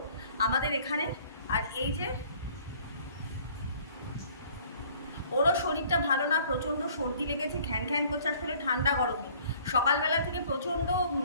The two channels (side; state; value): both; inverted; correlation -0.55